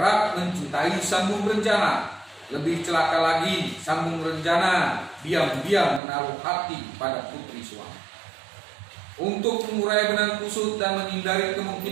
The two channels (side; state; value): left; drops out; at 6.0 s